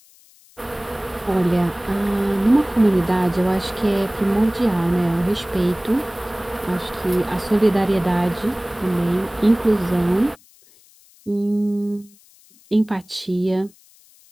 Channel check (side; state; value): left; noise; hiss, 28 dB below the sound